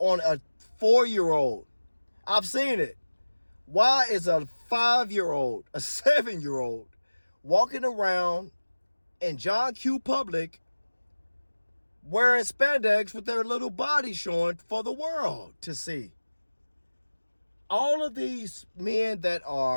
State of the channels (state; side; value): inverted; both; correlation -1.00